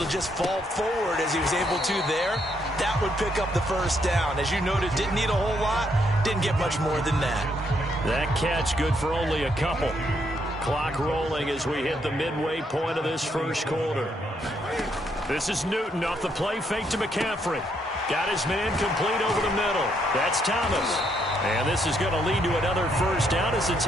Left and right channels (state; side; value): normal; both; correlation 0.74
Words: just fall forward as he was able to there, that would pick up the 1st down. As you noted, didn't need a whole lot, didn't get much more than that. That catch good for only a couple. Clock rolling as we hit the midway point of this 1st quarter. This is Newton off the play fake to McCaffrey. Got his man complete over the middle. That's Thomas. And this is going to lead to another 1st down as the